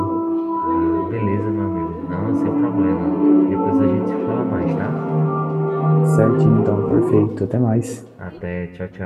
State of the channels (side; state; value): both; identical; correlation 1.00